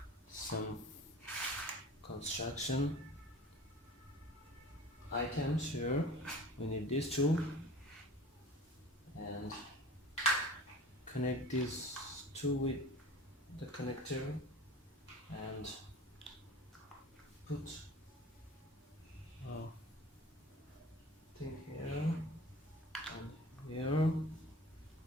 some construction items here. We need these two and connect these two with the connector and put thing here and here.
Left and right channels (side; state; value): both; normal; correlation 0.40